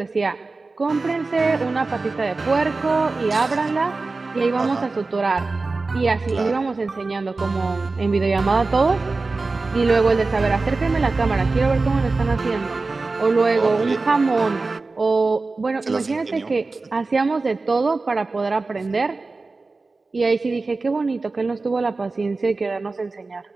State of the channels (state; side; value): quieter; left; 3.7 dB